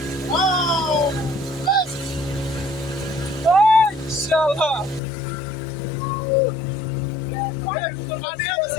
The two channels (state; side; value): drops out; right; at 5.0 s